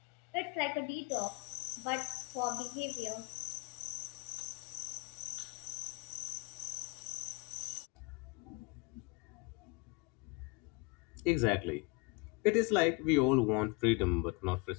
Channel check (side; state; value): right; quieter; 24.6 dB